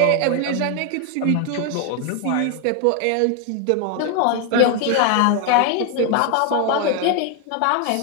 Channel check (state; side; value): different; both; correlation 0.01